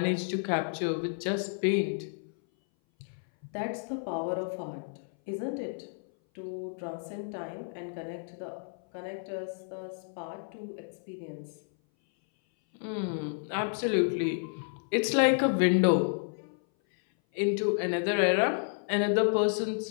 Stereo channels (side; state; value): right; silent; 57 dB below the other